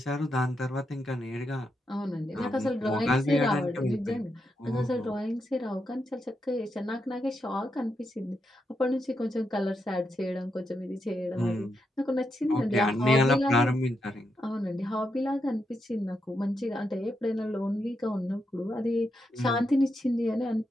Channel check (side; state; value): both; normal; correlation 0.84